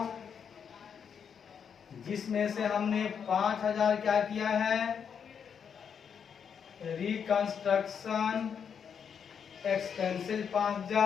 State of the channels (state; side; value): quieter; right; 7.2 dB